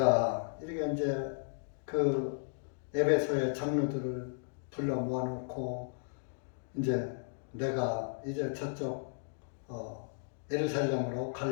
이렇게 이제 그 에베소의 장로들을 불러 모아놓고 이제 내가 이제 저쪽 예루살렘으로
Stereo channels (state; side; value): silent; right; digital silence